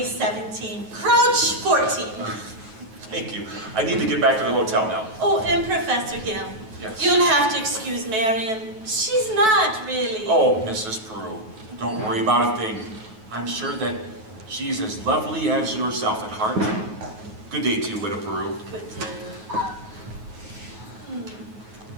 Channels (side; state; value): left; late; 9.2 ms